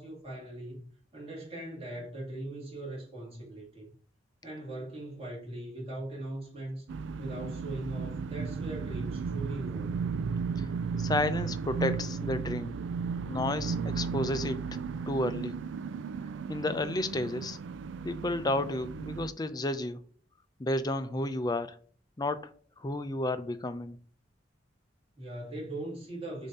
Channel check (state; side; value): normal; both; correlation 0.55